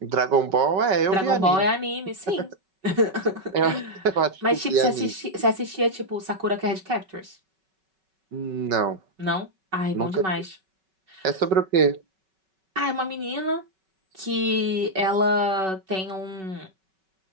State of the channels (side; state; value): left; late; 5.3 ms